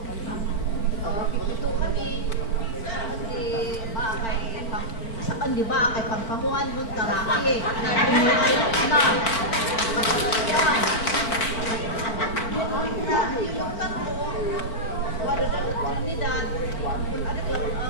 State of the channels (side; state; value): right; late; 4.4 ms